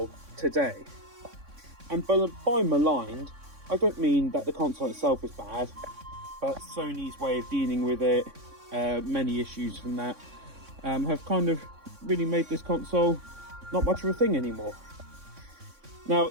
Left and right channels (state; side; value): late; left; 3.6 ms